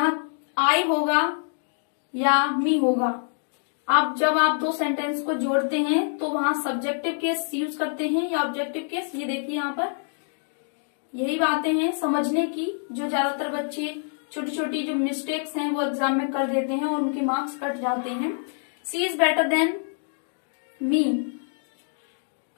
आई होगा या मी होगा। आप जब आप दो सेंटेंस को जोड़ते हैं तो वहां सब्जेक्टिव केस यूज करते हैं या ऑब्जेक्टिव केस। ये देखिए यहाँ पर यही बातें हैं समझने की, जो ज्यादातर बच्चे छोटी छोटी जो मिस्टेक्स हैं वो एग्जाम में कर देते हैं और उनके मार्क्स कट जाते हैं। सी इज बेटर देन मी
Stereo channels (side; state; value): right; silent; 61 dB below the other